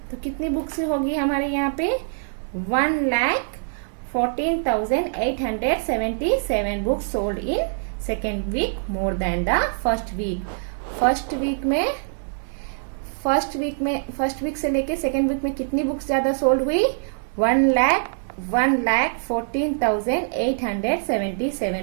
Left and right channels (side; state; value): left; silent; 63 dB below the other